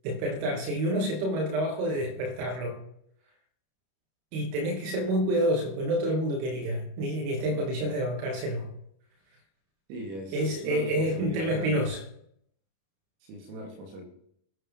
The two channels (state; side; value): late; left; 31 ms